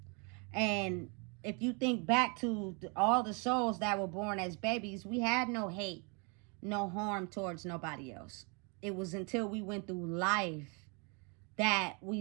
And if you think back to all the souls that were born as babies, we had no hate, no harm towards nobody else. It was until we went through life that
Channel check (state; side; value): quieter; left; 33.2 dB